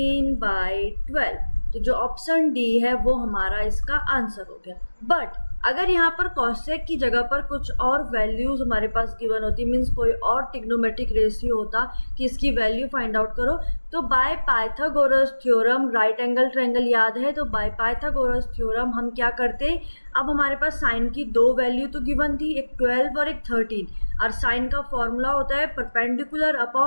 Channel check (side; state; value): both; inverted; correlation -1.00